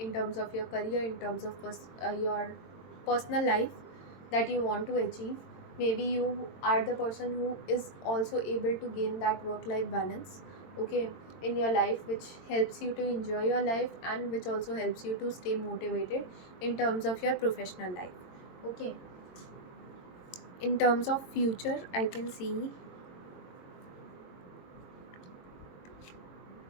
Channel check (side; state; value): right; late; 22 ms